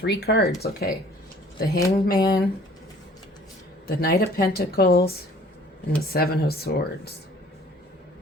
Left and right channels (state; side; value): normal; both; correlation 0.54